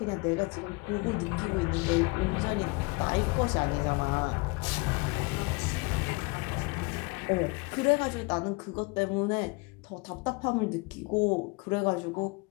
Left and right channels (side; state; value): right; quieter; 27.3 dB